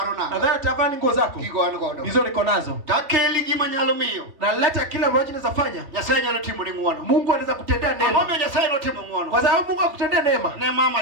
nanga. Nadhani atavaa nguo zako. Kigo an godo. Hizo niko nazo. Takeli gima nyalo miyo. Na leta kila ambacho naweza fanya. Nyasaye nyalo timo ni muono. Mungu anaweza kutendea neema. Amome Nyasaye no timo muono. Kwa sababu Mungu akutendea neema. Ne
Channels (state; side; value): late; left; 3.1 ms